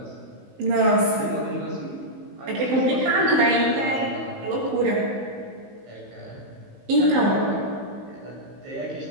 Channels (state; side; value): late; left; 15 ms